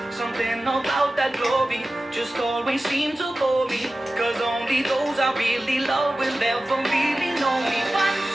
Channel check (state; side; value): normal; both; correlation 0.95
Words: Something about that glory just always seemed to bore me, cause only those I really love will ever really know me.